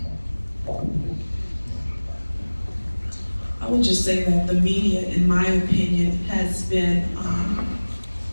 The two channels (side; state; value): both; inverted; correlation -1.00